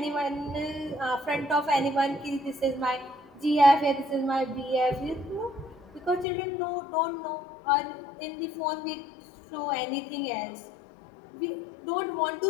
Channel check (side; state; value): right; drops out; at 6.2 s